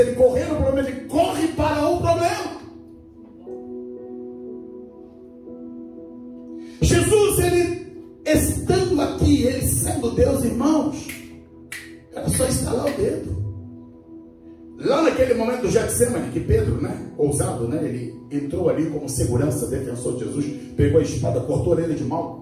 ele correr no problema, ele corre para o problema. Jesus, ele estando aqui, ele sendo Deus, irmãos, era só estalar o dedo. Lá naquele momento do Getsemane, que Pedro, ousado, ele entrou ali como segurança, defensor de Jesus, pegou a espada, cortou ele de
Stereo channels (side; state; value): both; identical; correlation 1.00